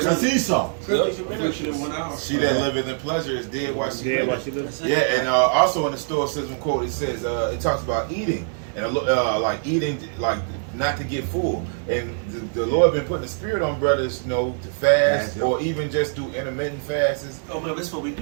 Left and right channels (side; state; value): left; silent; digital silence